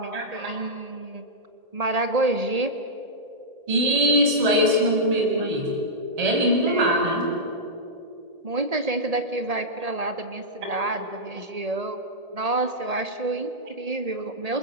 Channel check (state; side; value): late; left; 1.8 ms